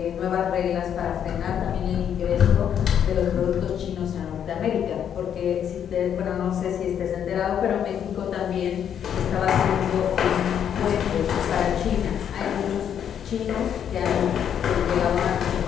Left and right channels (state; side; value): quieter; right; 8.9 dB